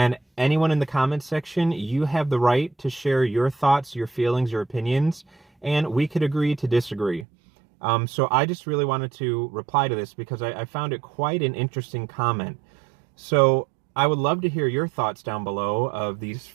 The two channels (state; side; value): drops out; left; at 7.2 s